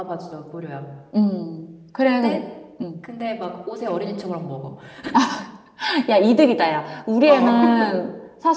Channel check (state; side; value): identical; both; correlation 1.00